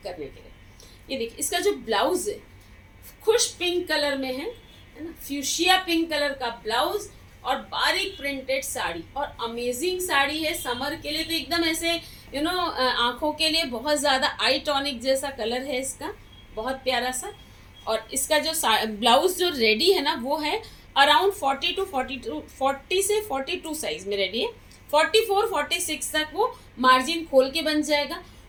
करने के लिए। ये देखिए, इसका जो ब्लाउज है खुश पिंक कलर में है ना, फ्यूशिया पिंक कलर का ब्लाउज और बारीक प्रिंटेड साड़ी। और अमेजिंग साड़ी है समर के लिए, तो एकदम ऐसे आंखों के लिए बहुत ज़्यादा आई टॉनिक जैसा कलर है इसका, बहुत प्यारा सा। और इसका जो ब्लाउज जो रेडी है ना, वो है अराउंड 40 से 42 साइज में रेडी है। 44-46 तक वो मार्जिन खोल के बन जाएगा।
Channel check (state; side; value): identical; both; correlation 1.00